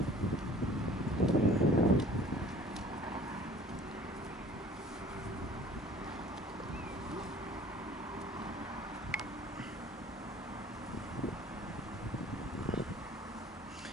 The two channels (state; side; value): normal; both; correlation 0.49